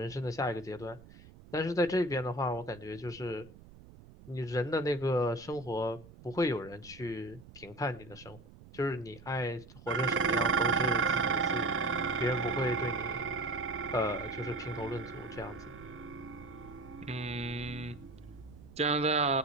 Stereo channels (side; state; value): right; noise; rumble, 20 dB below the sound